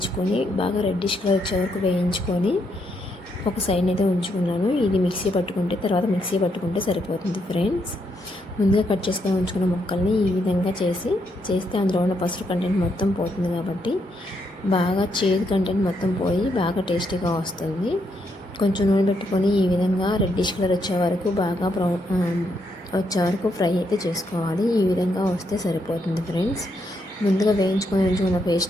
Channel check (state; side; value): normal; both; correlation 0.77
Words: బాగా రెడ్డిష్ కలర్ వచ్చే వరకు వేయించుకొని ఒక సైడ్ అయితే ఉంచుకున్నాను. ఇది మిక్సీ పట్టుకుంటే సరిపోతుంది ఫ్రెండ్స్. ముందుగా కట్ చేసుకొని ఉంచుకున్న ముక్కల్ని ఈ విధంగా చేస్తే అందులో ఉన్న పసుపు కంటెంట్ మొత్తం పోతుంది కాబట్టి బాగా చేదు కంటెంట్ మొత్తం పోయి బాగా టేస్టీగా వస్తుంది. కొంచెం నూనె పెట్టుకొని ఈ విధంగా రెడ్డిష్ కలర్ వచ్చే వరకు బాగా వచ్చే వరకు ఫ్రై అయితే చేసుకోవాలి. ఈ విధంగా వస్తే సరిపోతుంది ఫ్రెండ్స్. ముందుగా వేయించుకొని ఉంచుకున్న